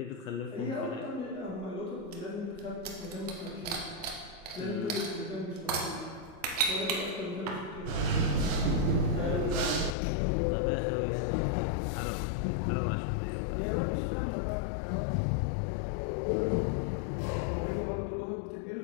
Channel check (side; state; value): right; drops out; at 10.0 s